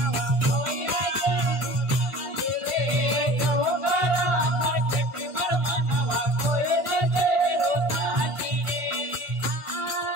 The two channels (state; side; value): late; left; 1.5 ms